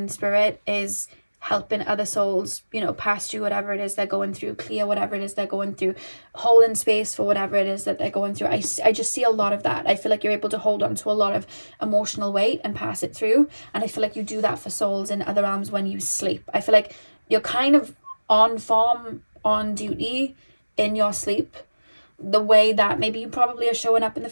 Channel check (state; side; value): inverted; both; correlation -1.00